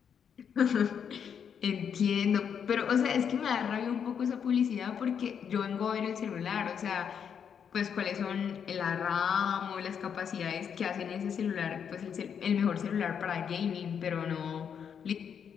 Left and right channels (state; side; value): quieter; right; 7.6 dB